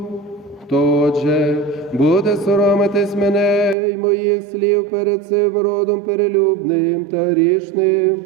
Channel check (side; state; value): left; drops out; at 3.8 s